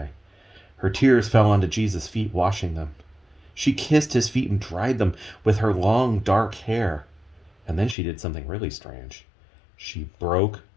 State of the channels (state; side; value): drops out; right; at 8.0 s